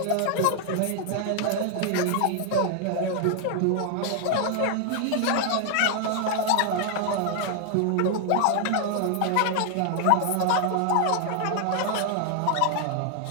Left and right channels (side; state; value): both; different; correlation 0.00